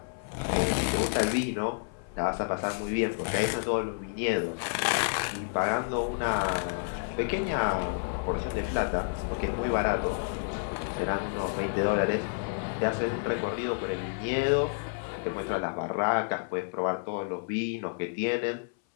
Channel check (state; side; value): silent; right; 58 dB below the other